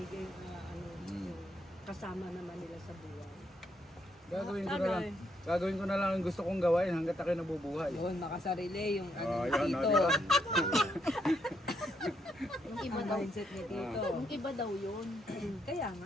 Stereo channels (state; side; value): normal; both; correlation 0.75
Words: yung kasama naman nila sa buhay. Gagawin ko na lang ang gusto kong gawain hanggat ako'y nabubuhay. Yun, nakasarili yung ano Yun, dito. diba? Yung iba daw. Mindset ni Tito. Yung iba daw yun. Kaya